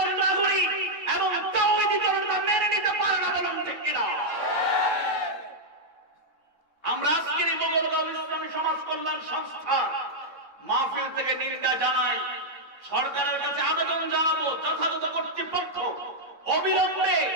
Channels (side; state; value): right; late; 3.7 ms